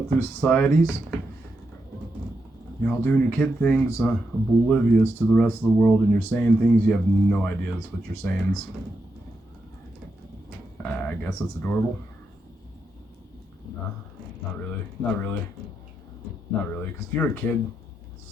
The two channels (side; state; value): both; normal; correlation 0.84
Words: through societies. You're all doing your kid things, oblivious to the rest of the world, and you're saying things you have no idea what you're saying. I guess it's adorable. Nah, not really. Not really. Not really. Because if you're a kid